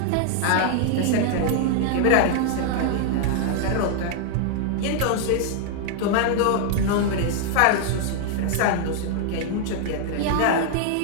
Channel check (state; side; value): different; both; correlation -0.01